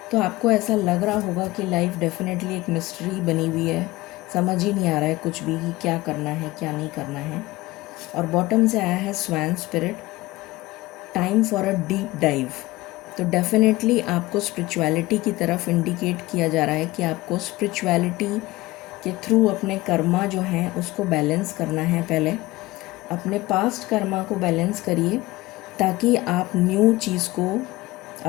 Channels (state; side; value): quieter; right; 19.2 dB